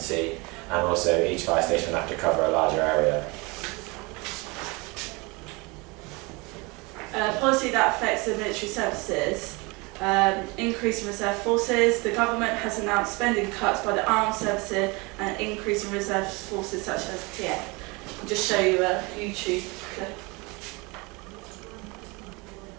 and also each fire station will have to cover a larger area. Policy that affects the military services, increase in reserve forces. The government has announced spending cuts by the armed services and an increase in reserve forces such as TA. I'll just show you a YouTube clip.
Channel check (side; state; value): left; quieter; 26.7 dB